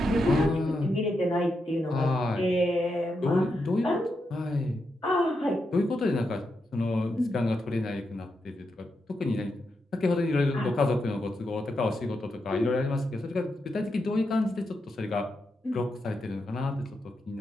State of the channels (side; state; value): both; normal; correlation 0.85